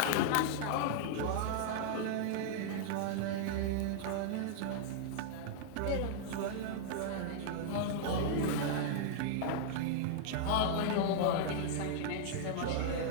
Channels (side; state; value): both; different; correlation -0.01